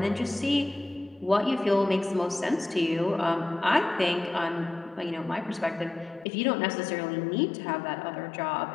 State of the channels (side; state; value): right; drops out; at 6.2 s